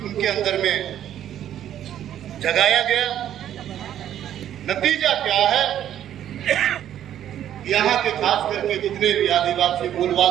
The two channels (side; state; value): left; quieter; 11.0 dB